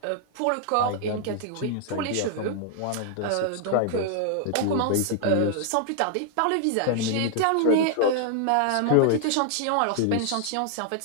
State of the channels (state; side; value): different; both; correlation 0.00